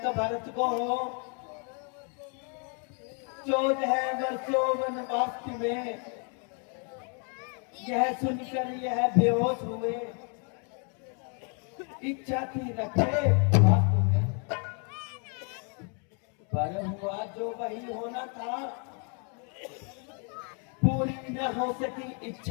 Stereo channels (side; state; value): right; quieter; 39.4 dB